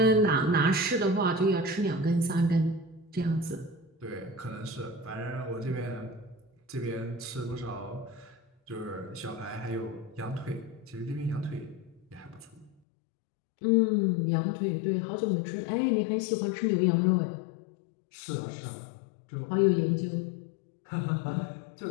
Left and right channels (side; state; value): right; drops out; at 12.8 s